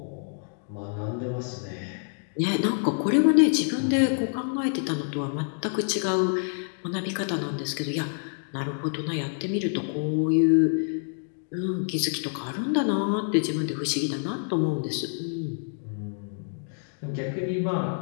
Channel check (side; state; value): right; silent; 60 dB below the other